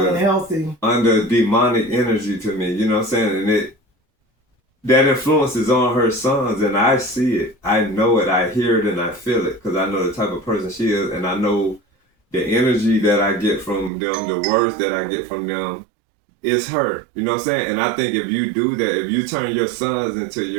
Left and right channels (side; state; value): left; drops out; at 13.9 s